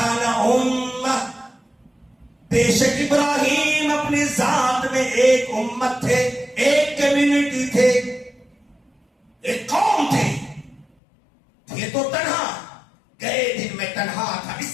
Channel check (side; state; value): right; drops out; at 10.9 s